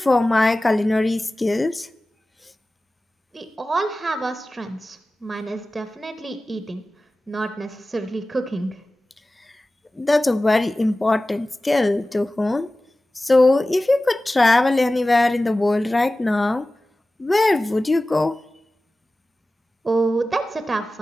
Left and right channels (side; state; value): both; normal; correlation 0.96